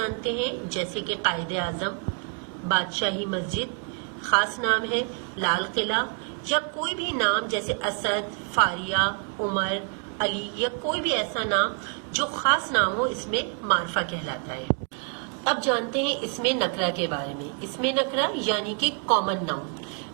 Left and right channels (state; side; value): quieter; left; 39.0 dB